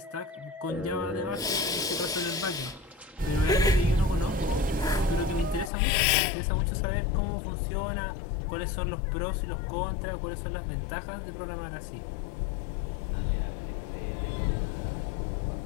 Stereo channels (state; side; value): drops out; right; at 5.7 s